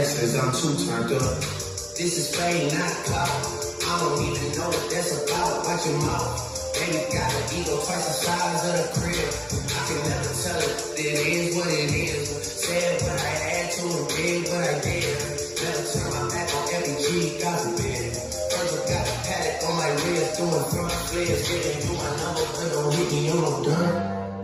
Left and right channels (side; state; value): both; identical; correlation 1.00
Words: I'm too turned up. This is fame, not clout. I don't even know what that's about. Watch your mouth. Baby got an ego twice the size of the crib. I can never tell it. It is what it is. Said what I had to and did what I did. Never turn my back on every G, God forbid. First I got a paddock on my wrist, doing front flips, giving you my number, but don't hit me on no